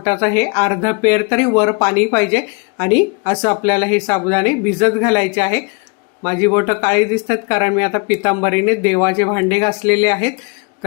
हे अर्धा पेर तरी वर पाणी पाहिजे. आणि असं आपल्याला हे साबुदाणे भिजत घालायचे आहे. माझी बोटं काळी दिसतात कारण मी आता पितांबरीने देवाचे भांडे घासलेले आहेत.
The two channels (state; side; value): quieter; right; 32.9 dB